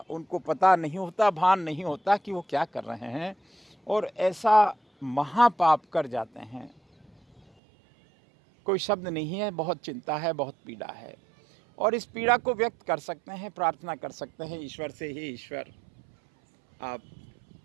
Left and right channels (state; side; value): drops out; left; at 7.4 s